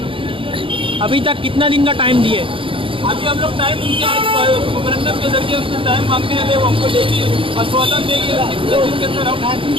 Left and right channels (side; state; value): left; late; 0.25 ms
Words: से। अभी तक कितना दिन का टाइम दिए? अभी हम लोग टाइम उनके आज मेमोरेंडम के जरिए उनसे टाइम मांगते हैं, वो हमको देगी, आश्वासन देगी कितने दिन के अंदर हम